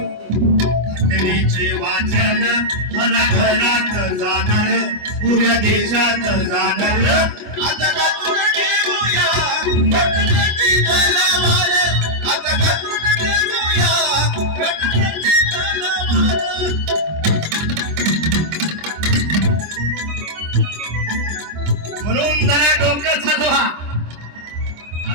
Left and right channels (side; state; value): left; late; 25 ms